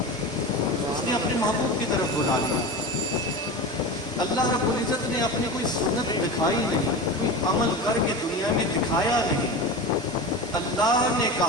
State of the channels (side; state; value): right; noise; hum, 23 dB below the sound